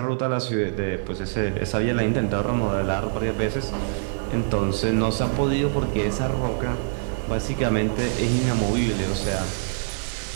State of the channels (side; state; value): left; silent; digital silence